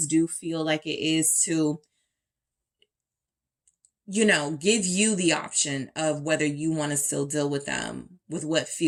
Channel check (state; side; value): identical; both; correlation 1.00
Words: do feel like it is to, give you the option of whether you want to still deal with them with what